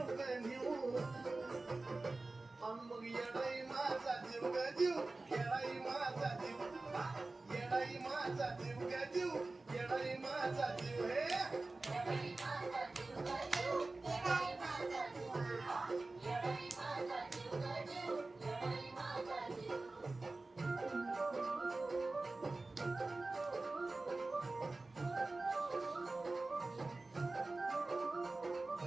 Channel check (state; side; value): quieter; left; 3.3 dB